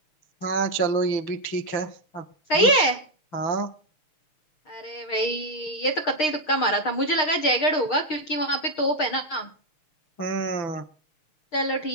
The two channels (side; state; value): right; late; 6.5 ms